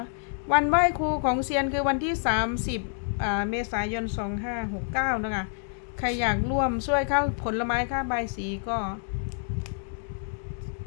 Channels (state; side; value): silent; right; 60 dB below the other